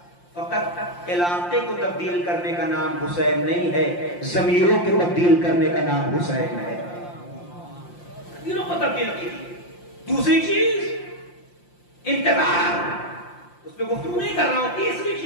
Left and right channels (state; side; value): late; right; 5.7 ms